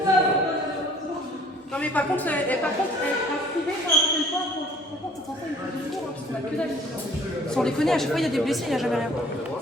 Non mais par contre, un privé, quand on fait le point, c'est censé être plus court, parce qu'on a que dalle. Sans déconner, à chaque fois il y a des blessés, il n'y a jamais rien.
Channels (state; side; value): normal; both; correlation 0.54